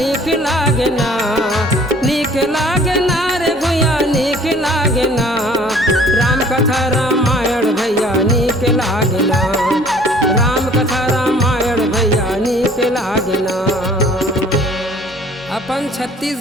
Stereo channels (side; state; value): both; normal; correlation 0.54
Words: लागना, नीक लागना रे गुइया नीक लागना, राम कथा रामायण भैया नीक लागना, राम कथा रामायण भैया नीक लागना। अपन